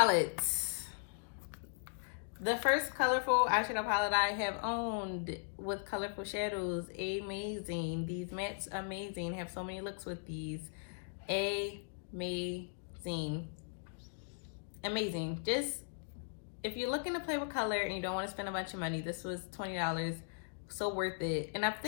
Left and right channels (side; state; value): right; silent; digital silence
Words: The first colorful eyeshadow palette I have owned with colorful shadows. Amazing. These mattes, amazing. Have so many looks with these. Amazing. Amazing. Just, if you're looking to play with color and you don't want to spend a bunch of money, this was $20, so worth it. And I